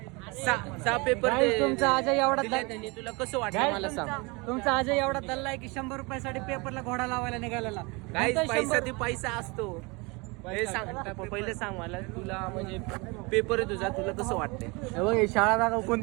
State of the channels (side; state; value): left; quieter; 27.2 dB